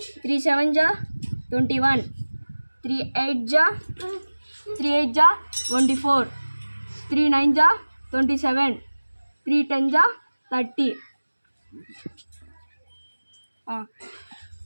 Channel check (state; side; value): inverted; both; correlation -1.00